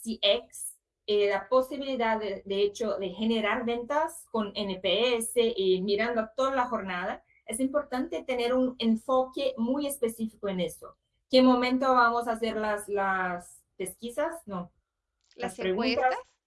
la posibilidad de hecho de generar ventas con NPS y mirando toda la jornada, es importante tener un enfoque muy específico en eso. ¿Qué momento vamos a hacer las pesquisas? No, las Las preguntas, encuestas.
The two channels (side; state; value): both; identical; correlation 1.00